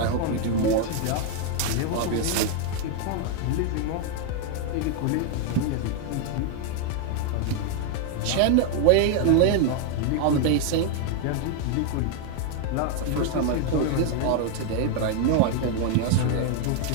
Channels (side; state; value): both; different; correlation 0.00